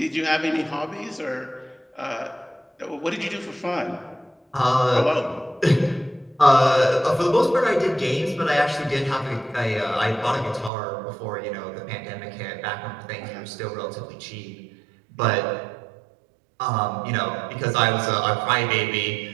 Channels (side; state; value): left; drops out; at 10.7 s